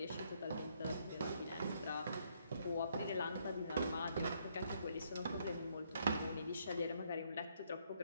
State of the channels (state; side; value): inverted; both; correlation -0.71